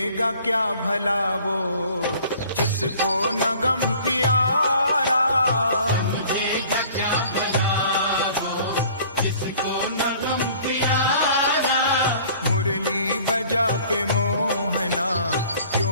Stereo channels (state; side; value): inverted; both; correlation -0.50